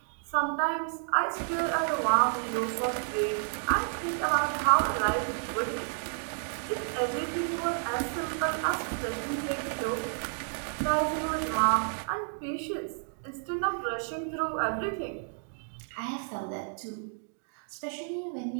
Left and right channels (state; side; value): silent; left; 57 dB below the other